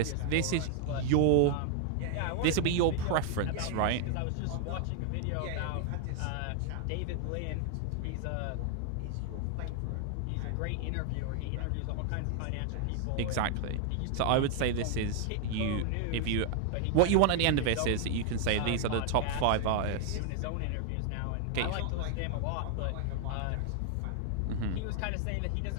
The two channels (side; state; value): both; different; correlation 0.00